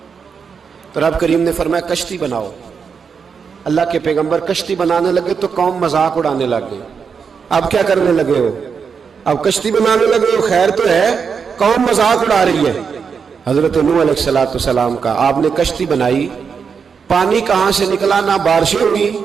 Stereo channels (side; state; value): left; quieter; 6.1 dB